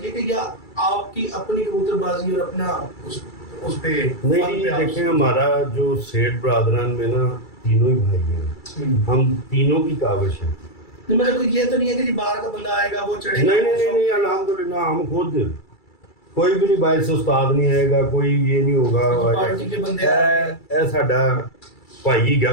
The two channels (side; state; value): right; late; 2.3 ms